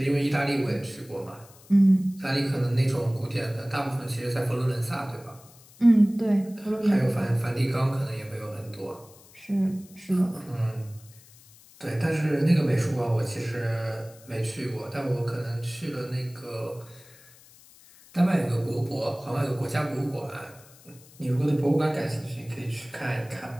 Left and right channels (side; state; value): left; noise; hiss, 24 dB below the sound